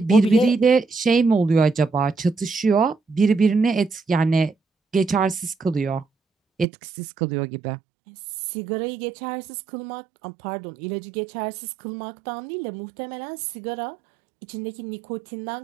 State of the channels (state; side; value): drops out; left; at 6.7 s